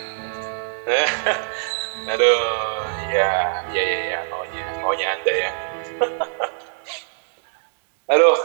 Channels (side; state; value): left; silent; digital silence